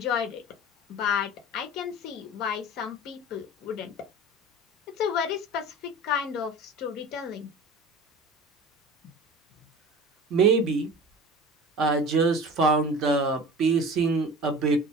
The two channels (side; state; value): both; normal; correlation 0.37